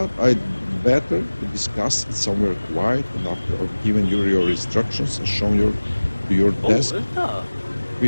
I'd better to discuss it somewhere quiet and after I've given you your instructions and shown you to your desk.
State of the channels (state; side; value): inverted; both; correlation -1.00